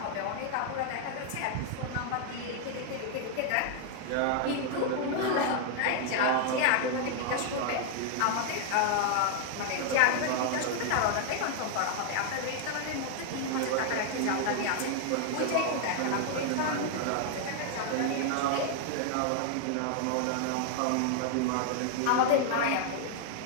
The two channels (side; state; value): both; different; correlation 0.00